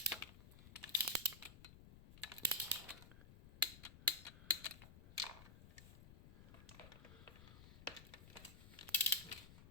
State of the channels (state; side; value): noise; left; rumble, 16 dB below the sound